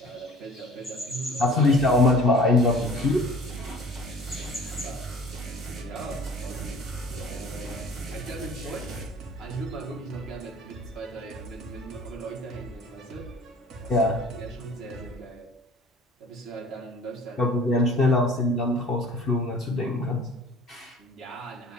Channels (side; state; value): both; normal; correlation 0.47